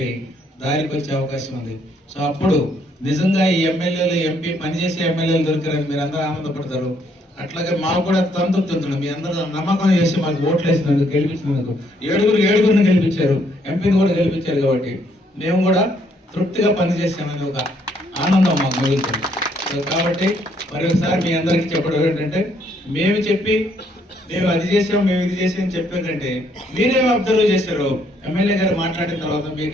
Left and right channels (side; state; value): both; normal; correlation 0.69